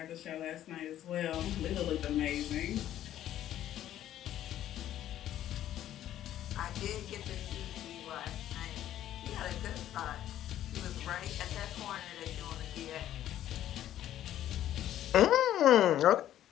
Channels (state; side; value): quieter; right; 12.1 dB